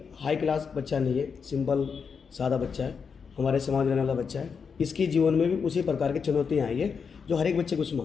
हाई क्लास बच्चा नहीं है, सिंपल सादा बच्चा है, हमारे समाज में रहने वाला बच्चा है। इसके जीवन में भी उसी प्रकार की चुनौतियाँ आई है जो हर एक बच्चे को उसमें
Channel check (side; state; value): right; quieter; 6.0 dB